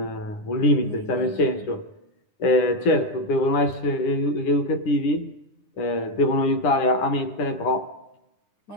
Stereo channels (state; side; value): late; right; 9.8 ms